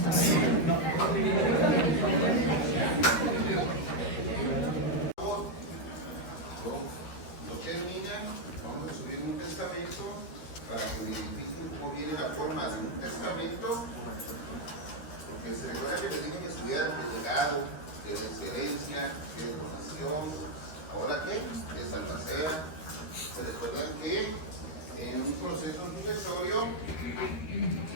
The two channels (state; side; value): late; right; 13 ms